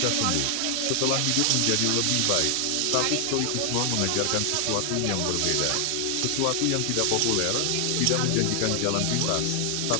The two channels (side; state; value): both; different; correlation 0.00